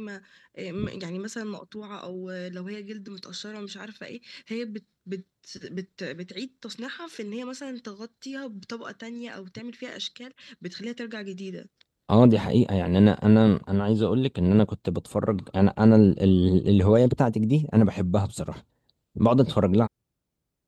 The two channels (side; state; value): both; identical; correlation 1.00